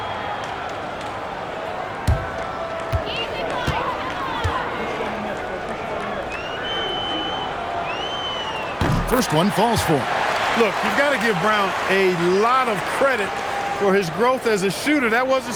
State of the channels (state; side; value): identical; both; correlation 1.00